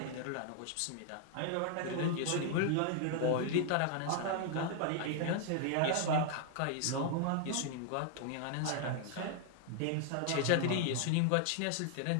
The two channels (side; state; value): both; different; correlation 0.00